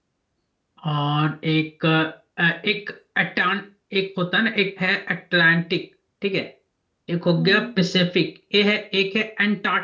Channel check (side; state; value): both; identical; correlation 1.00